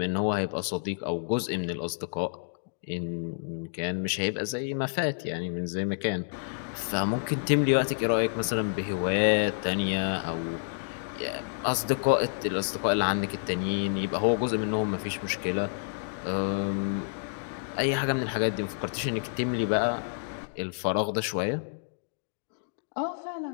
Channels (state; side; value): silent; right; digital silence